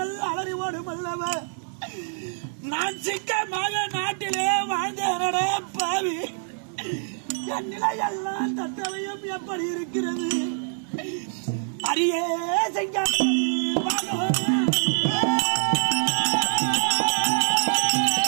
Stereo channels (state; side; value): silent; left; 61 dB below the other